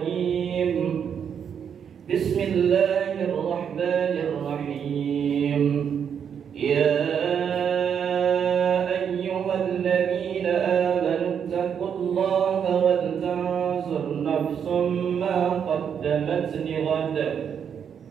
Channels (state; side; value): quieter; left; 7.7 dB